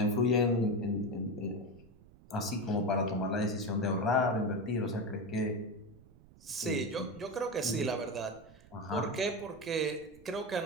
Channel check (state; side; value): noise; right; rumble, 23 dB below the sound